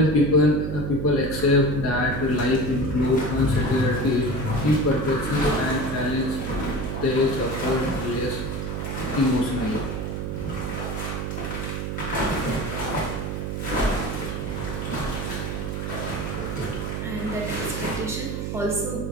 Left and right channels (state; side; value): noise; right; hum, 3 dB below the sound